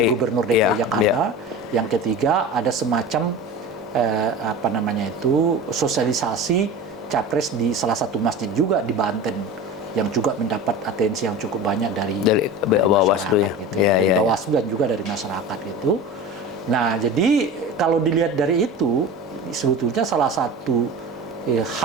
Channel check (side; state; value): both; normal; correlation 0.33